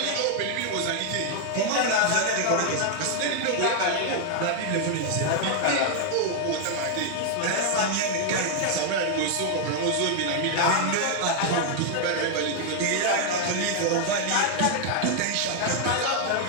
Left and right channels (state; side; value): different; both; correlation 0.00